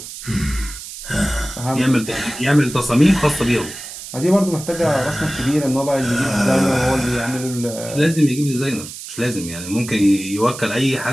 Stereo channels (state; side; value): noise; right; hiss, 12 dB below the sound